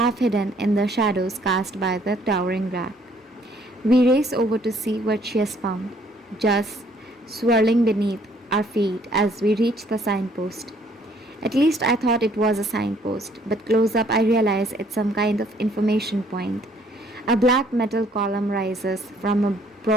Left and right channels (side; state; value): both; normal; correlation 0.63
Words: hidden in the shadows cast by the towering rack. We race over to see what she has found, just swirling beneath our feet as we reach the signpost. At least I thought it was a signpost, but close up I realize it's some kind of information point. A black metal column rises from a